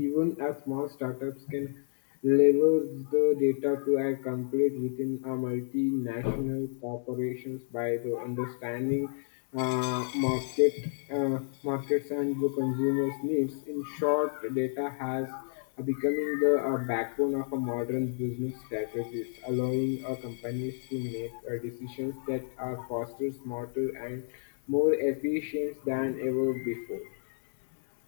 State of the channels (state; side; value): silent; right; digital silence